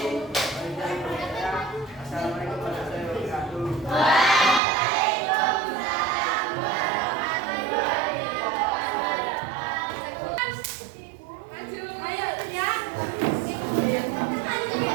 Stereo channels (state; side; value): drops out; left; at 4.6 s